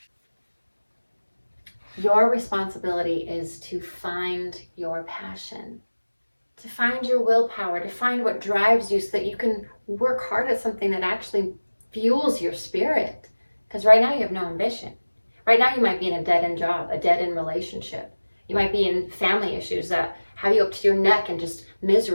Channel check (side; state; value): both; inverted; correlation -1.00